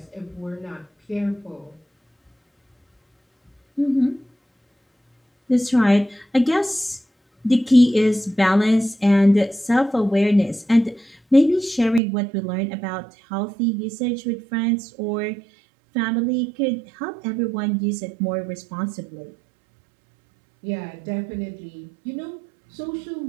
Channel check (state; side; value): drops out; left; at 12.0 s